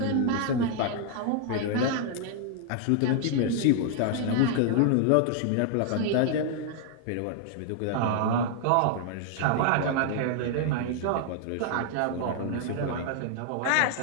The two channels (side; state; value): both; different; correlation 0.00